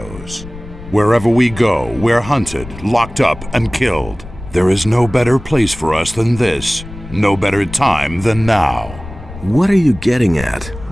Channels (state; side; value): noise; left; rumble, 14 dB below the sound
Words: Wherever we go, we're hunted, locked up, and killed. There is no better place for us than this. No better time than now. What are you getting at?